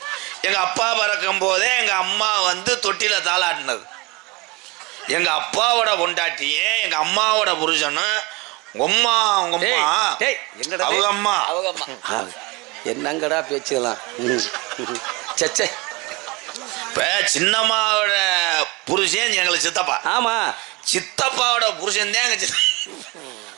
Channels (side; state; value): left; quieter; 24.9 dB